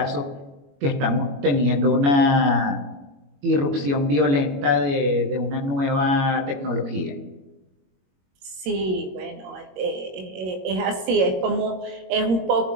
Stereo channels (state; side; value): late; left; 22 ms